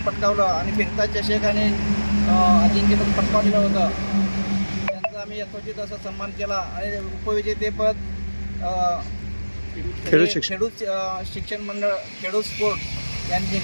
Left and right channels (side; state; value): both; inverted; correlation -1.00